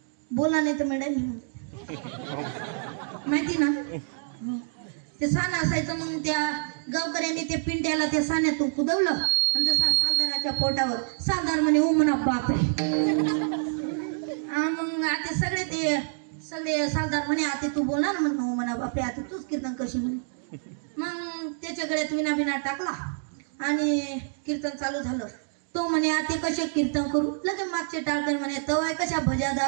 बोला नाही तर मॅडम माहिती ना, ते साना असायचं. मग त्या गावकऱ्यांनी ते पिंट्याला त्या साण्यातून कुदवलं आणि जसा सालदाराच्या पोटावर सालदार म्हणे ओ म्हणा बापरे. मग आता सगळे सालदार म्हणे आता तू बोलणार म्हण हो म्हणा बापरे, आता तूच कीर्तन कशी म्हणे. मग त्याच्या गळ्यात विना विना टाकला आणि कीर्तन चालू झालं. तो म्हणे आता कसे कीर्तन करू, लगे मागचे टाळकर म्हणे तवाय कशा भजा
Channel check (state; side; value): silent; left; digital silence